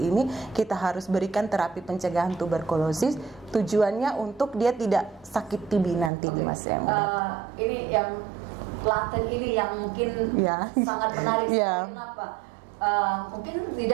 kita harus berikan terapi pencegahan tuberkulosis. Tujuannya untuk dia tidak sakit TB nanti, Mas. Ini yang laten ini yang mungkin sangat menarik. Kenapa? Mungkin di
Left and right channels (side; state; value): left; drops out; at 6.1 s